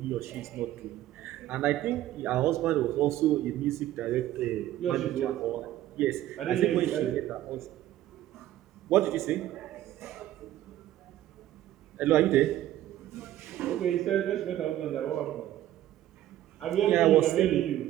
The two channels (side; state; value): left; quieter; 13.5 dB